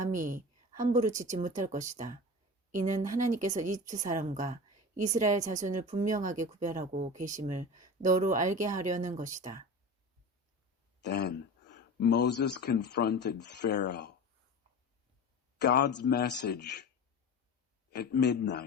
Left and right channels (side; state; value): both; normal; correlation 0.31